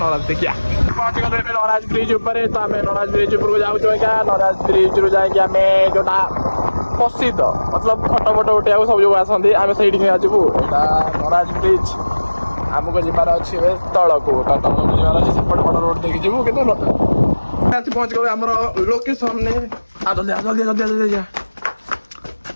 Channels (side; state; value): both; inverted; correlation -1.00